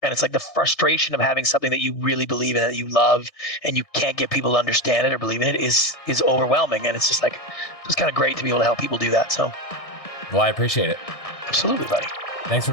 And it's like the frustration of having something that you really believe in, that you love, and you can't get people to understand it or believe in it is overwhelming. And it's just like, it's kind of great to be able to help people do that. So, well, I appreciate it. Absolutely, buddy. Thanks for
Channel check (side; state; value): right; late; 1.6 ms